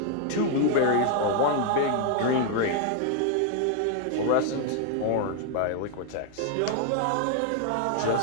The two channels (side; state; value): both; different; correlation 0.00